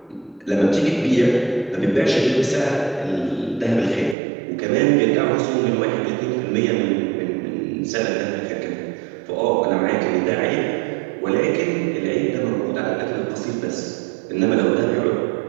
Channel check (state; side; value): drops out; left; at 4.2 s